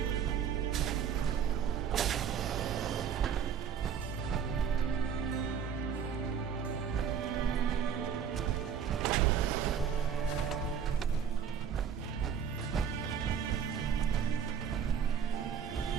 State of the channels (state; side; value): quieter; left; 7.5 dB